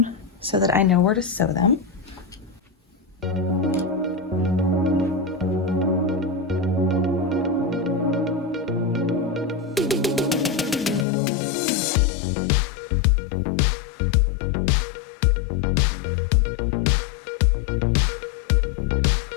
so that I know where to sew them.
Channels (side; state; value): right; drops out; at 11.1 s